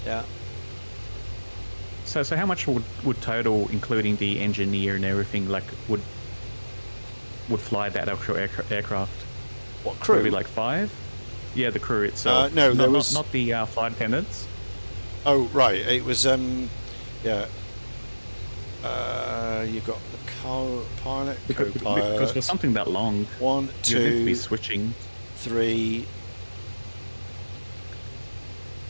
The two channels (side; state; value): both; inverted; correlation -1.00